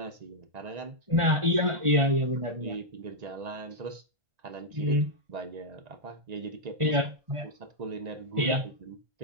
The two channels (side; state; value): left; late; 1.5 ms